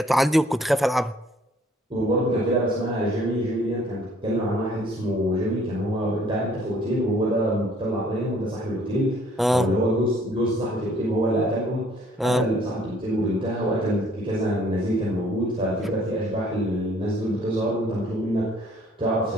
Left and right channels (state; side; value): normal; both; correlation 0.60